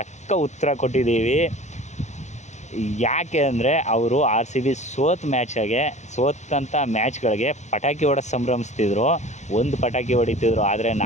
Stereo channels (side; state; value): right; late; 0.34 ms